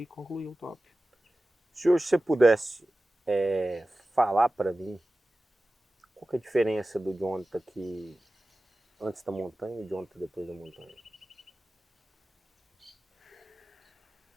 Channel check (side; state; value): both; normal; correlation 0.95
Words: concluiu o top. Se hoje você pudesse falar para mim qual que é a diferença do Jonathan que antes da montanha e do Jonathan depois da montanha?